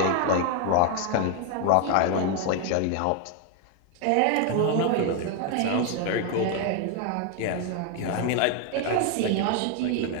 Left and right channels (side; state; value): both; different; correlation 0.01